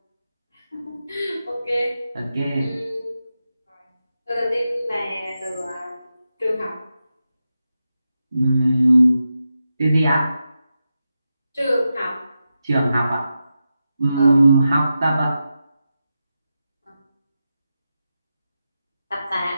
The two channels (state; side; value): inverted; both; correlation -0.90